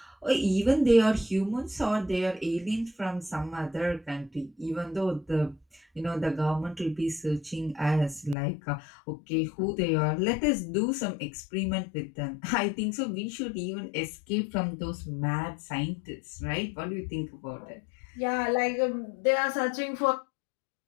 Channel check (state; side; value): drops out; right; at 8.3 s